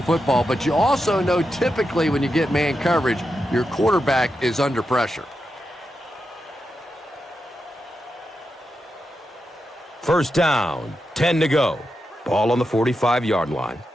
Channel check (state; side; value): normal; both; correlation 0.87